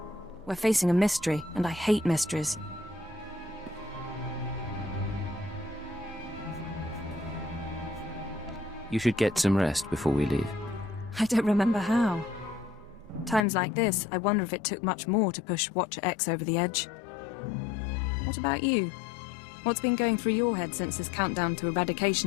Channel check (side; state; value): right; drops out; at 13.4 s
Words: We're facing a mystery, and I hate mysteries. You should get some rest before we leave. I don't remember how. Times like this, I wonder if it took much more to push Watcher X over the edge. What about you? What's been going through your head since this countdown to